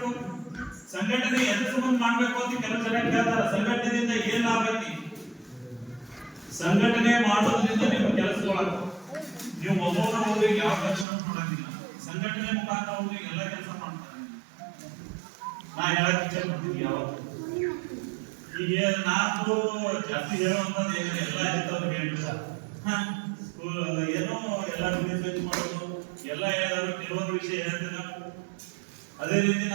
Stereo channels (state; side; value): drops out; left; at 11.1 s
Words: ಸಂಘಟನೆ ಎದ್ರ ಸಂಬಂಧ ಮಾಡ್ಬೇಕು ಅಂತ ಕೆಲವು ಜನ ಕೇಳ್ತಾರ. ಸಂಘಟನೆಯಿಂದ ಏನ್ ಲಾಭ ಐತಿ? ಸಂಘಟನೆ ಮಾಡೋದ್ರಿಂದ ನಿಮ್ಮ ಕೆಲಸಗಳಾಗ ನೀವು ಒಬ್ಬೊಬ್ಬರ ಹೋಗಿ ಯಾವ ಕೆಲಸ ಮಾಡೋದಿಲ್ಲ. ಸಂಘಟನೆ ಮುಖಾಂತರ ಹೋಗಿ ಎಲ್ಲ ಕೆಲಸ ಮಾಡ್ತಾರೆ. ನಾ ಹೇಳಕ್ ಇಚ್ಛೆ ಪಡ್ತೀನಿ, ಯಾವತ್ತು ಈಗ ನಾನು ಜಾಸ್ತಿ ಹೇಳುವಂತದ್ದು ಏನಿದೆ ಎಲ್ಲ ಇರ್ತವ್ರು ಹೇಳ್ಬಿಡ್ತಾರೆ. ಸ್ಕೂಲ್ ಏನೋ ಎಲ್ಲ ಬಿಸ್ನೆಸ್ ಮಾಡೋದು ಎಲ್ಲ ಹೇಳಿದ್ರು, ಕೆಲವೊಂದು ವಿಷಯ ಹೇಳ್ತೀನಿ. ಅದೇ ರೀತಿ